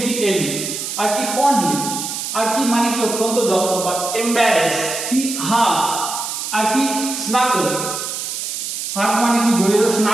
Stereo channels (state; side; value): noise; right; hiss, 5 dB below the sound